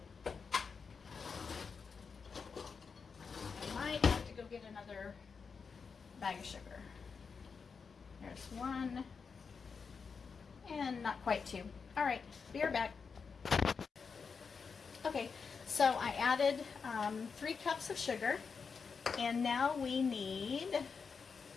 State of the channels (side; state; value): right; quieter; 5.5 dB